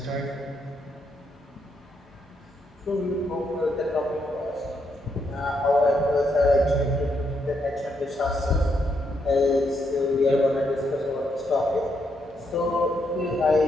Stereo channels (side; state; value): both; normal; correlation 0.78